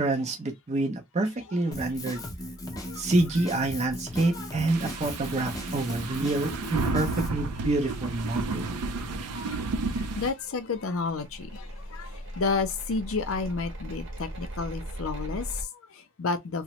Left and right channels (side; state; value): both; normal; correlation 0.53